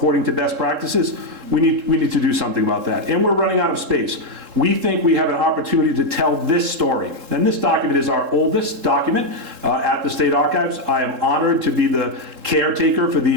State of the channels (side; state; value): left; late; 3.7 ms